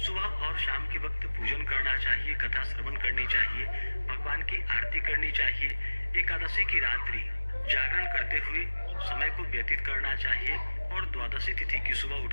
और शाम के वक्त पूजन करना चाहिए, कथा श्रवण करनी चाहिए, भगवान की आरती करनी चाहिए। एकादशी की रात्रि जागरण करते हुए समय को व्यतीत करना चाहिए और द्वादशी तिथि की सुबह उठ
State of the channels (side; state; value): both; inverted; correlation -1.00